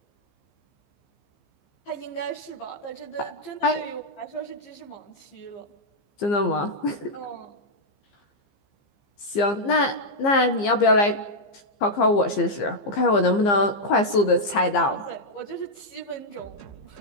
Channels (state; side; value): late; right; 15 ms